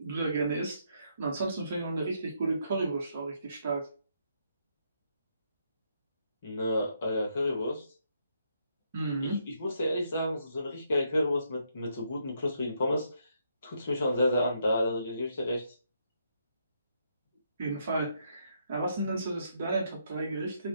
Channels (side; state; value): both; inverted; correlation -0.75